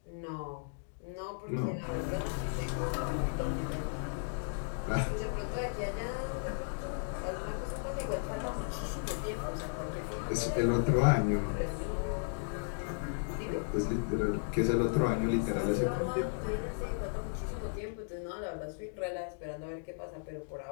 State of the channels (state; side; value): silent; right; digital silence